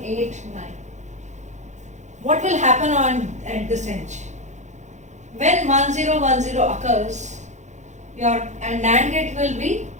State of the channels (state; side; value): late; left; 0.34 ms